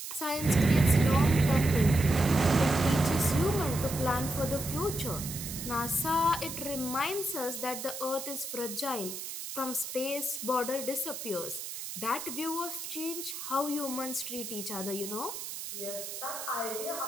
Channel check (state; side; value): noise; right; hiss, 8 dB below the sound